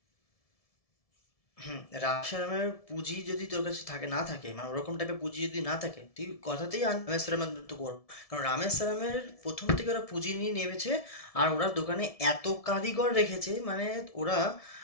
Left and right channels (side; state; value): right; late; 1.7 ms